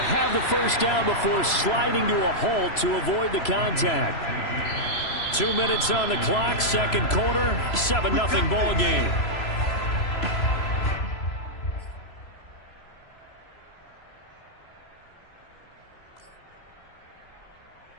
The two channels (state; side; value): late; right; 3.0 ms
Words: have the first down before sliding to a halt to avoid the contact. 2 minutes on the clock, second quarter, 7-0 ball game.